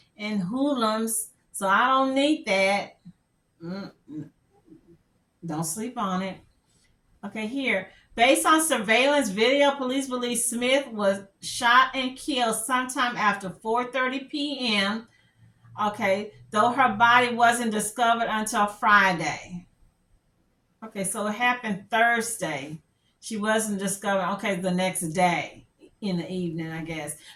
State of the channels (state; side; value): identical; both; correlation 1.00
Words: hoodlums, so I don't need that. Don't sleep on it. Okay, here. Based on surveillance video, police believe Smith was shot and killed sometime after 4:30 p.m. Okay, though her body wasn't discovered until Friday. Okay, so it happened Thursday. She wasn't discovered, okay, the next day in the evening, I guess.